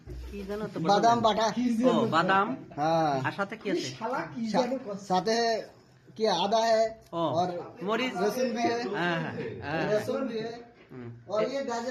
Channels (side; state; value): both; identical; correlation 1.00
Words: কি জানো তো? বাদাম বাটা। ও বাদাম। हाँ, আর সাথে কি আছে? साथ है कि आदा है ও और মরিচ। लहसुन भी है, হ্যাঁ হ্যাঁ। लहसुन भी है और ये गाजर।